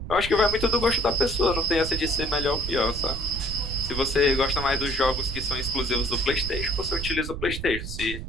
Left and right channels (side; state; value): right; noise; rumble, 7 dB below the sound